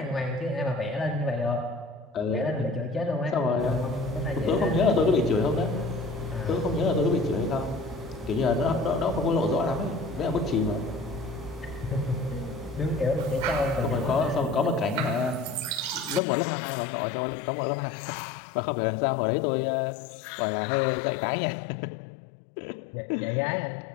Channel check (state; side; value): drops out; right; at 16.2 s